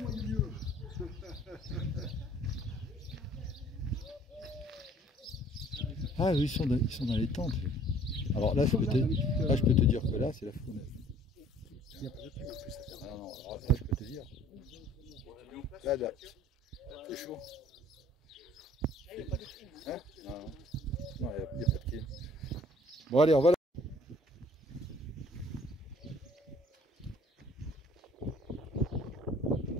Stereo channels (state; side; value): normal; both; correlation 0.55